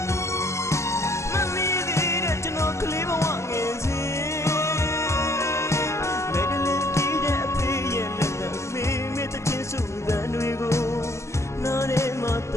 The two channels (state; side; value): late; right; 0.14 ms